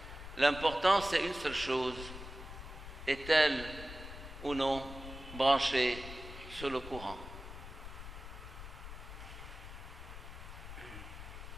L'important, c'est une seule chose. Est-elle ou non branchée sur le courant?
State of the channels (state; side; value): noise; left; rumble, 11 dB below the sound